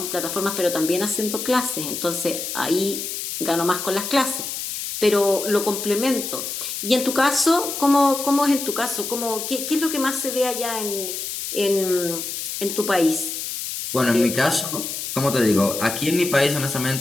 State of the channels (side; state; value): left; noise; hiss, 5 dB below the sound